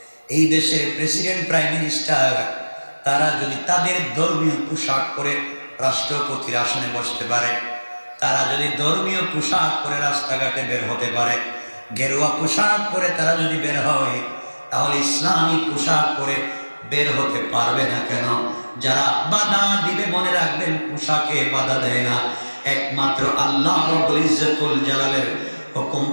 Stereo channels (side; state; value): both; inverted; correlation -1.00